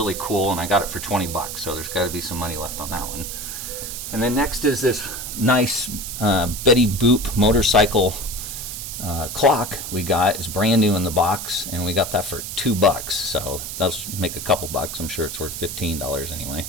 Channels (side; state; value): right; noise; hiss, 7 dB below the sound